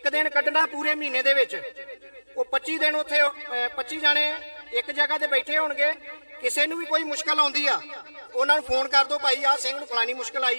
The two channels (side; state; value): both; inverted; correlation -1.00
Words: ਦਿਨ ਕੱਢਣਾ ਪੂਰੇ ਮਹੀਨੇ ਦੇ ਵਿੱਚ, ਉਹ 25 ਦਿਨ ਉੱਥੇ 25 ਜਾਣੇ ਇੱਕ ਜਗ੍ਹਾ ਤੇ ਬੈਠੇ ਹੋਣਗੇ। ਕਿਸੇ ਨੂੰ ਵੀ ਕੋਈ ਮੁਸ਼ਕਲ ਆਉਂਦੀ ਆ, ਉਹਨਾਂ ਨੂੰ ਫੋਨ ਕਰ ਦਿਓ, ਭਾਈ ਆਹ ਸਿੰਘ ਨੂੰ ਫਲਾਣੀ ਮੁਸ਼ਕਲ